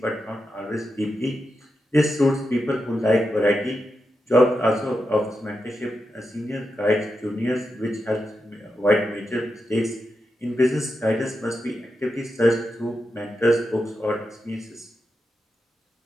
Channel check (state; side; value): normal; both; correlation 0.88